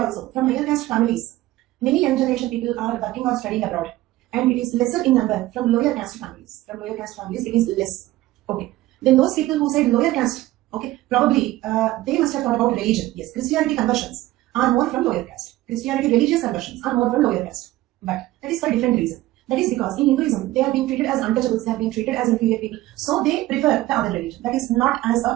from higher caste families, many young generation people are working or studying abroad, and it is lesser in number from lower caste families. From lower caste families, it is less. Okay, then those people who said lower caste, okay, probably they must have thought about religion. Yes, Christianity conversions are more from lower caste. Christianity religious conversions are more from lower caste. But that is for a different reason. That is because in Hinduism, they are being treated as untouchables, they are being treated as inferior people. So they prefer the other religion. That is not as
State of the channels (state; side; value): quieter; left; 16.8 dB